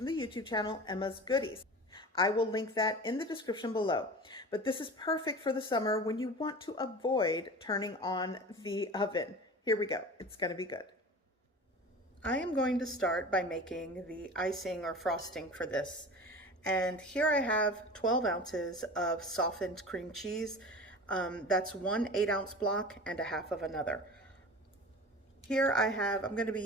the YouTube channel, Emma's Goodies. I will link that in the description below. But this is perfect for the summer when you want to avoid turning on the oven. Here we go, it's gonna be good. I am going to start by making the icing or frosting for this. And here I have 12 ounces of softened cream cheese. That's one 8-ounce block and a half of another. Here I'm going to be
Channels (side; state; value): both; normal; correlation 0.36